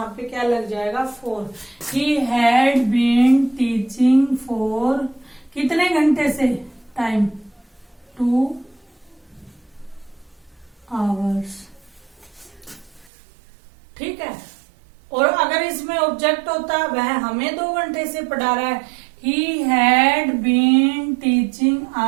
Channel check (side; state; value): left; drops out; at 13.1 s